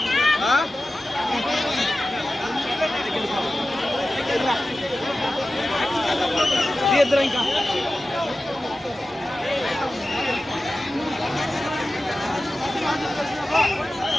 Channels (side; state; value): both; normal; correlation 0.95